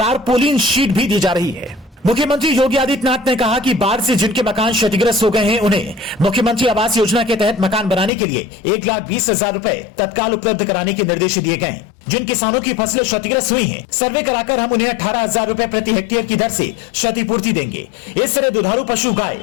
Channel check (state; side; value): drops out; right; at 8.1 s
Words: शीट भी दी जा रही है। मुख्यमंत्री योगी आदित्यनाथ ने कहा कि बाढ़ से जिनके मकान क्षतिग्रस्त हो गए हैं, उन्हें मुख्यमंत्री आवास योजना के तहत मकान बनाने के लिए 1,20,000 रुपए तत्काल उपलब्ध कराने के निर्देश दिए गए हैं। जिन किसानों की फसलें क्षतिग्रस्त हुई हैं, सर्वे कराकर हम उन्हें 18,000 रुपए प्रति हेक्टेयर की दर से क्षतिपूर्ति देंगे। इस तरह दुधारू पशु गाय,